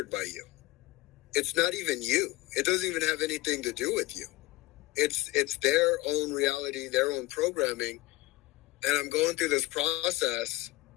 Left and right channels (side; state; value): right; quieter; 19.5 dB